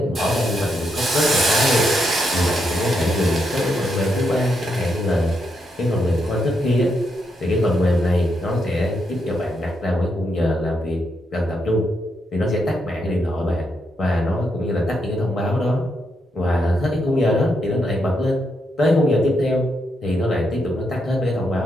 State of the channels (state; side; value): normal; both; correlation 0.80